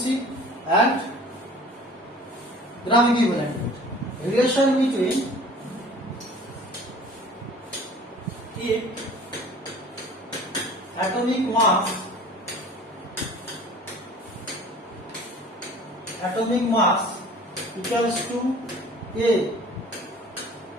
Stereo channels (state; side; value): normal; both; correlation 0.46